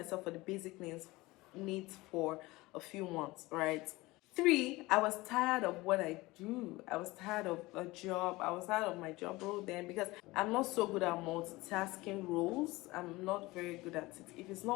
for the basic needs for a few months, right? Three, I was tired of what I do. I was tired of a job. I was tired of my job role then because I'm not so good at multitasking roles. I'm not very good at it. If it's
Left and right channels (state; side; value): quieter; right; 20.8 dB